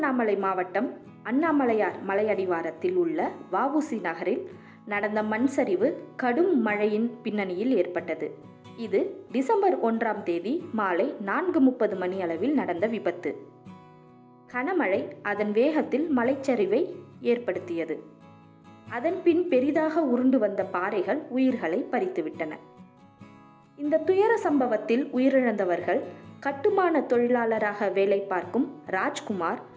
மாவட்டம் அண்ணாமலையார் மலையடிவாரத்தில் உள்ள வஉசி நகரில் நடந்த மண் சரிவு கடும் மழையின் பின்னணியில் ஏற்பட்டது. இது டிசம்பர் 1ஆம் தேதி மாலை 4:30 மணி அளவில் நடந்த விபத்து. கனமழை அதன் வேகத்தில் மலைச்சரிவை ஏற்படுத்தியது. அதன் பின் பெரிதாக உருண்டு வந்த பாறைகள் உயிர்களை பறித்துவிட்டன. இந்த துயர சம்பவத்தில் உயிரிழந்தவர்கள் கட்டுமான தொழிலாளராக வேலை பார்க்கும் ராஜ்குமார்,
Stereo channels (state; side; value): identical; both; correlation 1.00